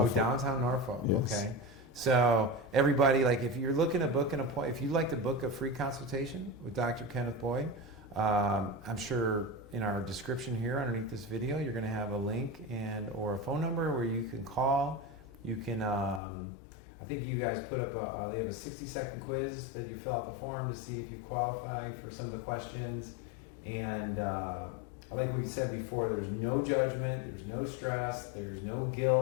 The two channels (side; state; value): right; drops out; at 16.2 s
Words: Oh, downtown Norfolk. Yes. Okay. So everybody, like, if you're looking to book an appointment, if you'd like to book a free consultation with Dr. Kenneth Boyd, I'm sure in our description here underneath this video, you're going to have a link or a phone number where you can call. You can, I think you guys put up they have a 60-second quiz that you fill out the form to see if you qualify for some of the questions. And like we said before, there's no judgment, there's no stress, there's no